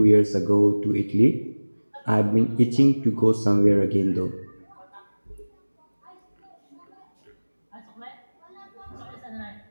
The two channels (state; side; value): inverted; both; correlation -1.00